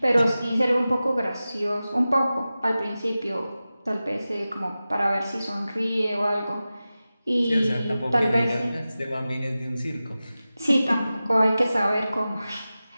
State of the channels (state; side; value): inverted; both; correlation -0.95